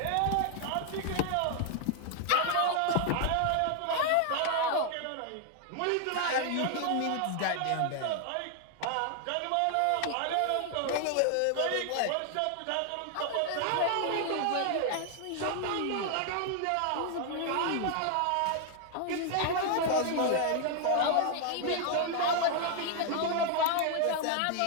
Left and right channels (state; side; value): different; both; correlation 0.00